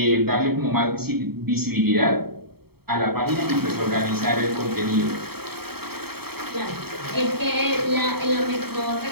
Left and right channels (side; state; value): left; late; 0.96 ms